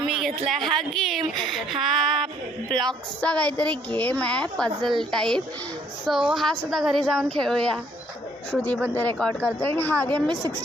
घेतला हा गेम. हा ब्लॉक्सचा काहीतरी गेम आहे, पझल टाईप. सो हा सुद्धा घरी जाऊन खेळूया. श्रुती पण ते रेकॉर्ड करते. आणि हा गेम मी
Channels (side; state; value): both; normal; correlation 0.64